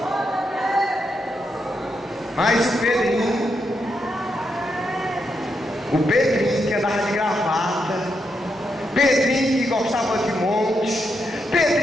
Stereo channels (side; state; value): both; normal; correlation 0.82